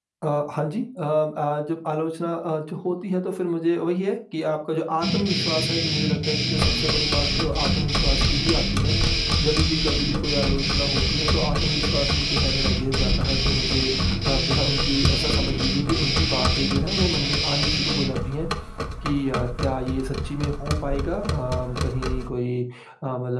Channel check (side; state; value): both; identical; correlation 1.00